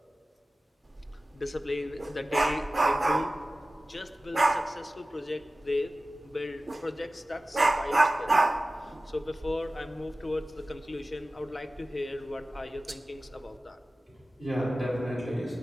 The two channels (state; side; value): normal; both; correlation 0.96